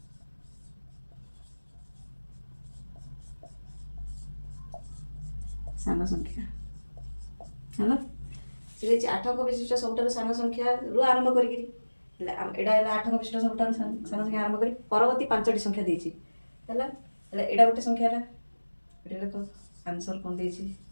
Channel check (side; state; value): both; inverted; correlation -1.00